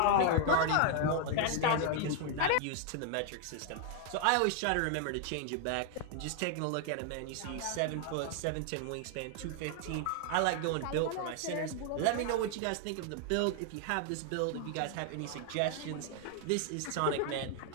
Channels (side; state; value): both; different; correlation 0.00